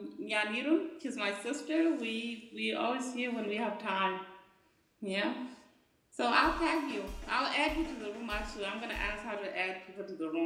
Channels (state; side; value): identical; both; correlation 1.00